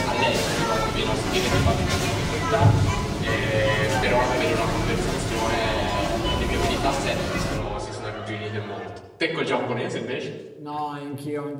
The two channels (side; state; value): both; identical; correlation 1.00